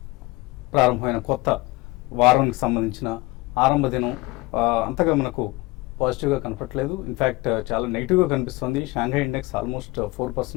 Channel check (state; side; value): quieter; right; 21.9 dB